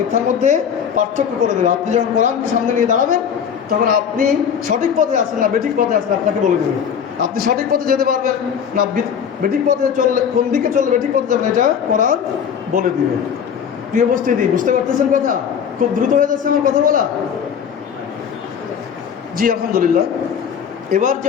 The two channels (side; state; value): right; quieter; 7.8 dB